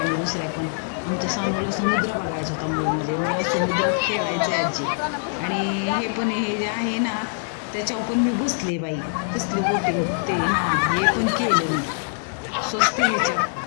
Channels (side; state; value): right; silent; 57 dB below the other